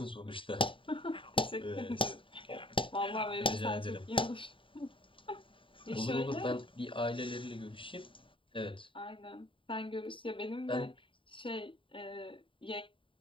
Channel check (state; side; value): late; right; 0.25 ms